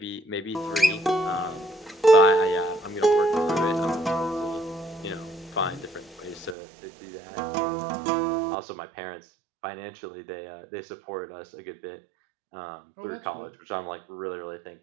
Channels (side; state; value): left; drops out; at 6.6 s